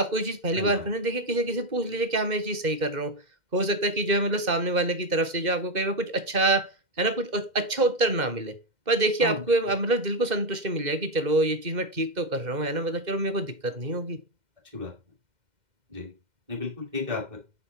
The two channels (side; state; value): left; late; 2.1 ms